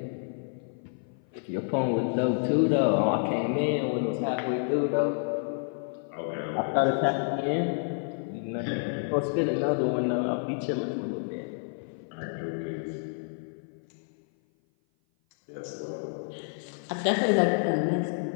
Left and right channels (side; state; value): right; silent; 56 dB below the other